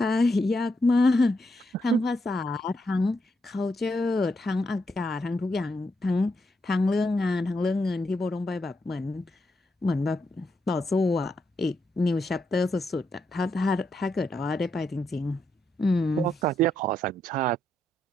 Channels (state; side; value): normal; both; correlation 0.80